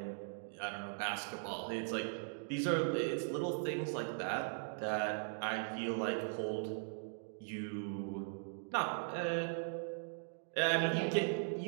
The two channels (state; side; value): silent; left; digital silence